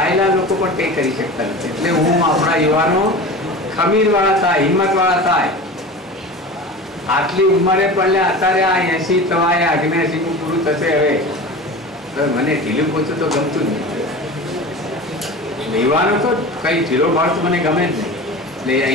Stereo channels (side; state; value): both; normal; correlation 0.33